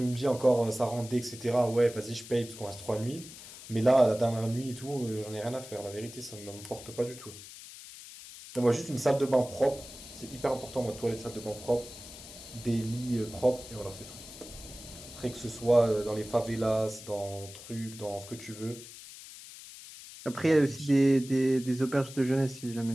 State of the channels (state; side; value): noise; left; hiss, 15 dB below the sound